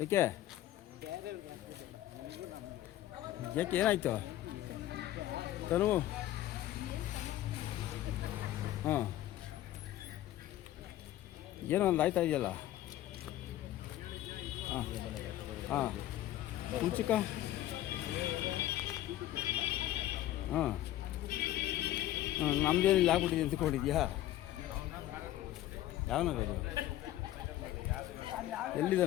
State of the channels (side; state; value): right; quieter; 14.0 dB